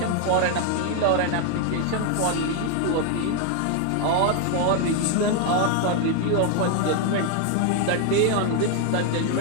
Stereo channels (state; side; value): different; both; correlation 0.01